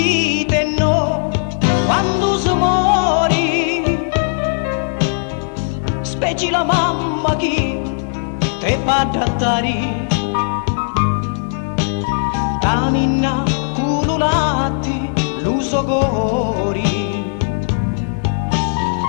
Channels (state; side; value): silent; right; digital silence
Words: no quando si muori, specie la mamma che te fa adattare, cammina cululati l'uso cori,